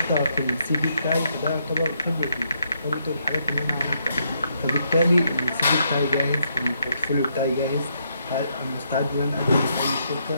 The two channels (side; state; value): both; inverted; correlation -0.76